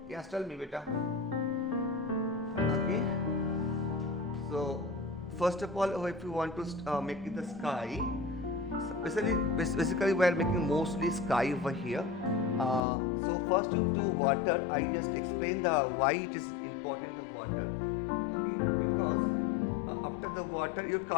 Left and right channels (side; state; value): right; drops out; at 12.8 s